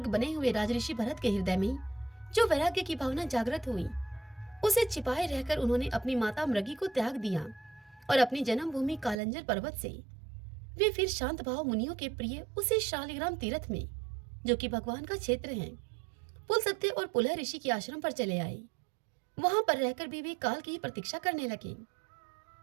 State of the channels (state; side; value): drops out; left; at 9.2 s